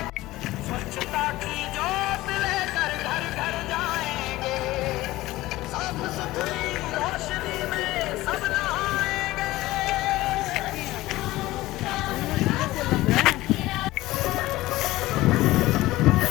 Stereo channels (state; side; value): quieter; right; 17.7 dB